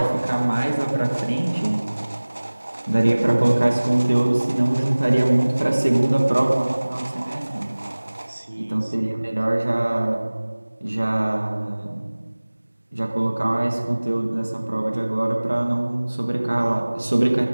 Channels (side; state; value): both; inverted; correlation -1.00